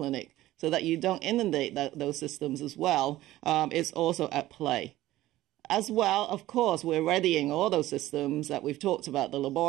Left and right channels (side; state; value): left; quieter; 15.8 dB